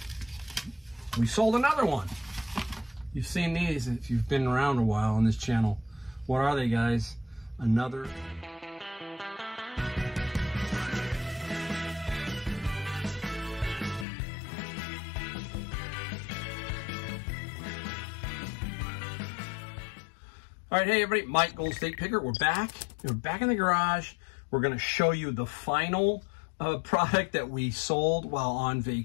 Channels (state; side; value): drops out; right; at 14.1 s